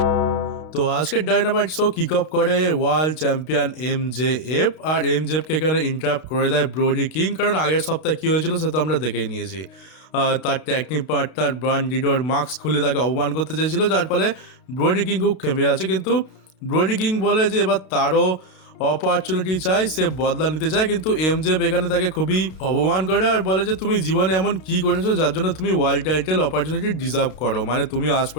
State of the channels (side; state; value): right; late; 32 ms